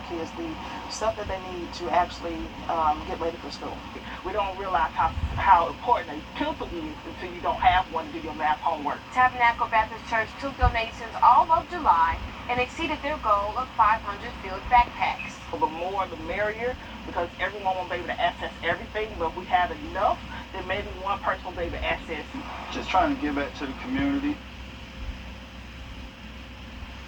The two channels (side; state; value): both; identical; correlation 1.00